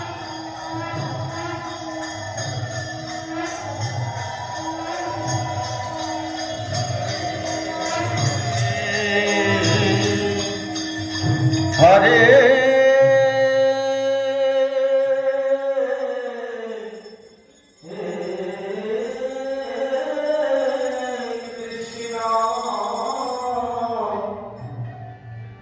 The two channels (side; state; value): both; identical; correlation 1.00